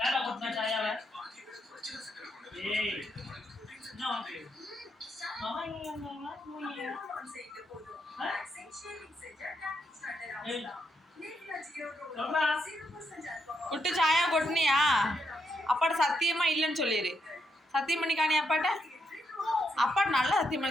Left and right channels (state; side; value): normal; both; correlation 0.79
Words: என்ன கொட்டின சாயாவை? ஏய் என்ன ஓகே. குட்டு சாயா கொட்டினியா? அப்பாட்ட சத்தியமா இல்லைன்னு சொல்லிடு. சத்தியம் பண்ணி காணி அப்பாட்ட. அப்பாட்ட நல்லா சத்தியம்